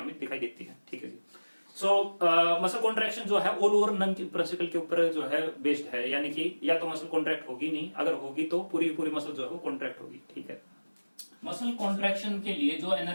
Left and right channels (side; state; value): both; inverted; correlation -1.00